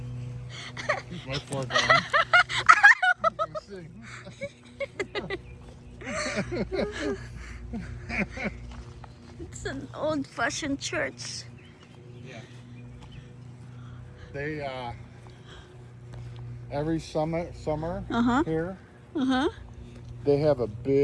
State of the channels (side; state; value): both; identical; correlation 1.00